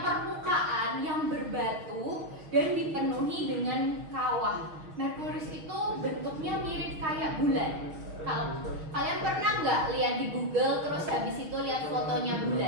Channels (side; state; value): left; late; 6.4 ms